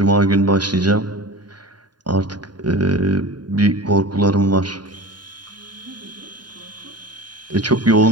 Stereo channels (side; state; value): left; late; 0.70 ms